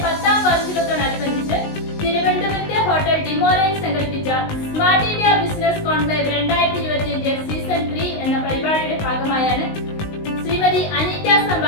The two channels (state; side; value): late; right; 19 ms